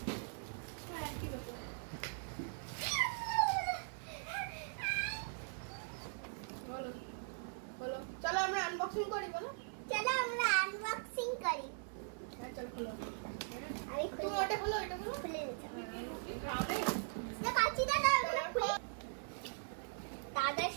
চলো আমরা আনবক্সিং করি, বলো। চলো আমরা আনবক্সিং করি। চল খোলো। আমি তুমি ওটা খোলো, এটা খোলো। খুলে দিচ্ছি না, কাঁচি দাদা ওগুলো খুলে। দাদা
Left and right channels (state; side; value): silent; left; 51 dB below the other